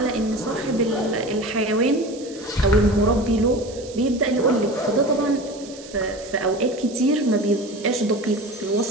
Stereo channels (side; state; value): right; noise; hiss, 18 dB below the sound